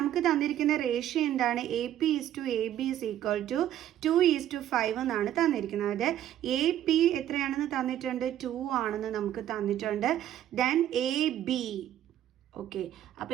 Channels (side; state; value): left; quieter; 11.8 dB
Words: തന്നിരിക്കുന്ന റേഷ്യോ എന്താണ്, A P is to A B is equal to 2:5 എന്നാണ് തന്നിരിക്കുന്നത്. എ പി എത്രയാണെന്ന് തന്നിട്ടുണ്ട്, 2 ആണെന്ന് നമുക്ക് തന്നിട്ടുണ്ട്. ദെൻ എ ബി, ഓക്കെ, അപ്പോൾ